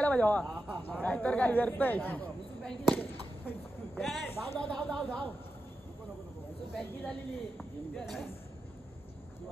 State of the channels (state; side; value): normal; both; correlation 0.89